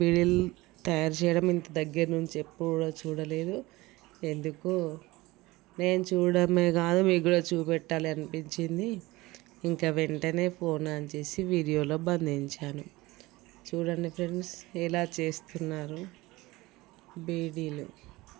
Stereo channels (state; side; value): quieter; left; 20.4 dB